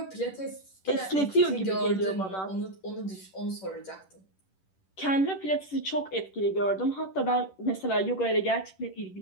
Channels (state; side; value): late; right; 10 ms